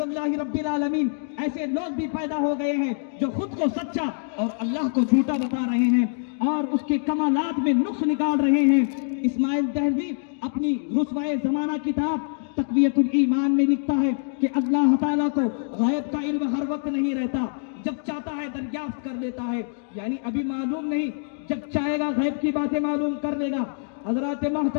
रब्बिल आलमीन। ऐसे लोग भी पैदा हो गए हैं जो खुद को सच्चा और अल्लाह को झूठा बता रहे हैं और उसके कमालात में नुक्स निकाल रहे हैं। इस्माइल दहलवी अपनी रुस्वाए जमाना किताब तक़वियतुल ईमान में लिखता है कि अल्लाह ताला को गैब का इल्म हर वक्त नहीं रहता, जब चाहता है दरियाफ्त कर लेता है, यानी अभी मालूम नहीं, जब चाहेगा गैब की बातें मालूम कर लेगा। हजरात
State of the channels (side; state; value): right; silent; digital silence